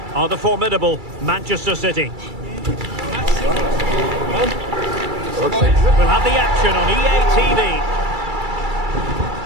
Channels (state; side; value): late; left; 2.3 ms